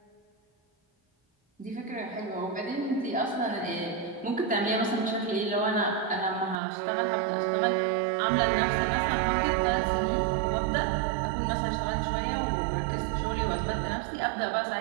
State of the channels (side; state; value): left; drops out; at 6.6 s